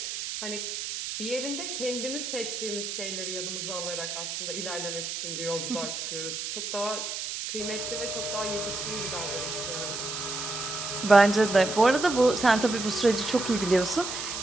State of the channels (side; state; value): right; noise; hiss, 5 dB below the sound